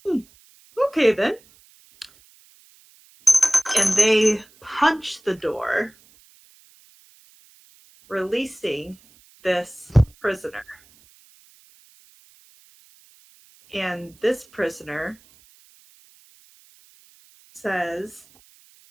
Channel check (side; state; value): right; noise; hiss, 29 dB below the sound